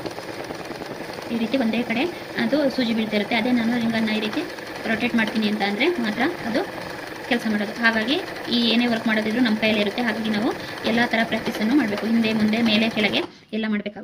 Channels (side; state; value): both; identical; correlation 1.00